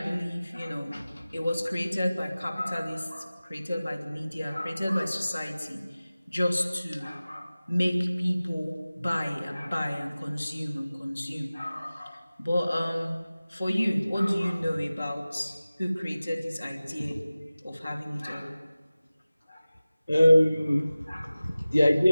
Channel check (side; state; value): both; inverted; correlation -0.97